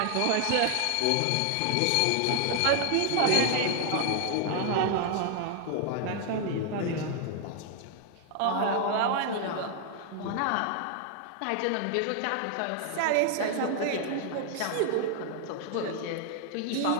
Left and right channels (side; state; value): both; different; correlation 0.00